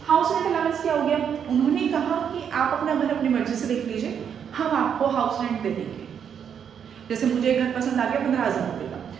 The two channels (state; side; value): quieter; left; 7.9 dB